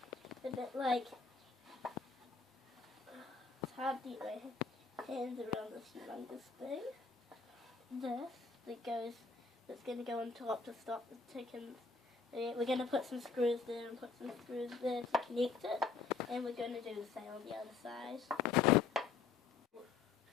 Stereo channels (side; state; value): right; quieter; 4.9 dB